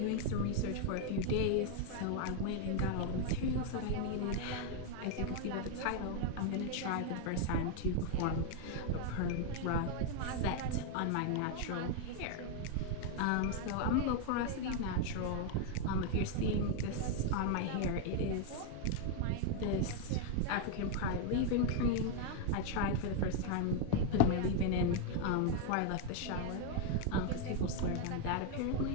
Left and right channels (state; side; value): different; both; correlation 0.01